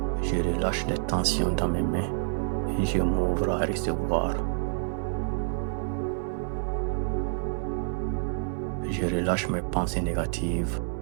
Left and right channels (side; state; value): left; silent; 59 dB below the other